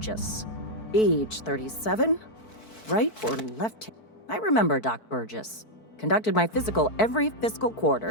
Age 37. Right or left? I remember Doc Burgess. Conducted my physical every fiscal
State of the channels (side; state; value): right; late; 4.6 ms